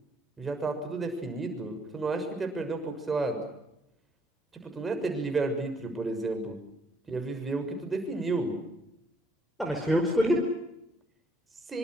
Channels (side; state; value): both; normal; correlation 0.68